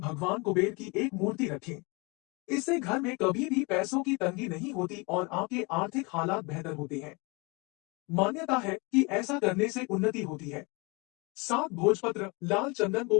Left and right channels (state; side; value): quieter; right; 28.5 dB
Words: कुबेर की एक मूर्ति रखें। इससे घर में कभी भी पैसों की तंगी नहीं होती और आपके आर्थिक हालात बेहतर होते हैं। मान्यता है कि ऐसा करने से उन्नति होती है। 7 भोजपत्र लाल चंदन